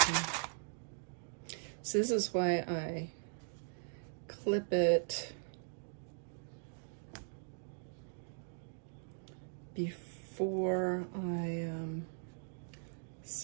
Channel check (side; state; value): left; silent; digital silence